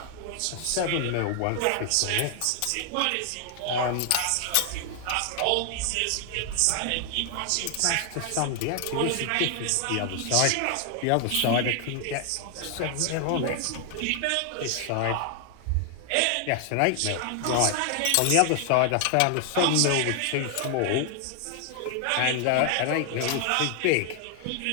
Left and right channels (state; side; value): different; both; correlation 0.00